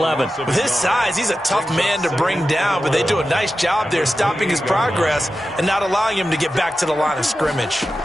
With his size, he's a tough man to bring down, but they do a nice job there stopping his progress and not allowing him to get back to the line of scrimmage.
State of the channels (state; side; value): normal; both; correlation 0.92